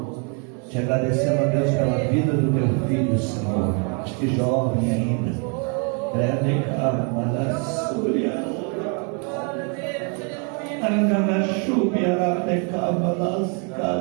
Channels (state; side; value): quieter; left; 37.5 dB